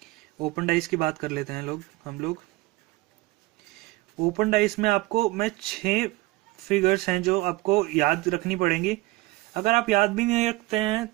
ओपन डाइस की बात कर लेते हैं हम लोग। ओपन डाइस में आपको मैं 6 फिगर्स हैं जो आपको याद रखनी पड़ेंगी। अगर आप याद भी नहीं रखते हैं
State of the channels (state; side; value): quieter; left; 20.8 dB